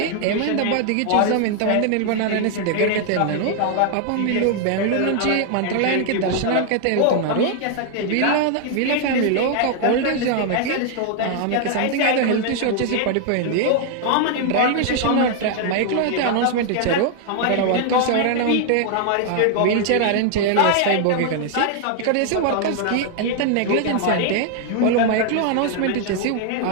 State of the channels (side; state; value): both; different; correlation 0.00